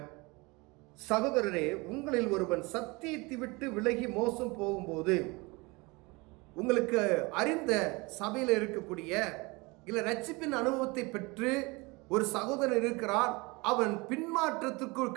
சகோதரரே, உங்களில் ஒருவன் சத்தியத்தை விட்டு விலகி மோசம் போகும்போது, உங்களுக்கு அறிந்த சபையில் இருக்கக்கூடிய இல்ல ரட்சிப்பின் அனுபவத்தை பெற்று ஒரு சகோதரன் இருக்கிறான், அவன் பின்மாற்றத்திற்குள்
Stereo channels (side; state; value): left; quieter; 25.5 dB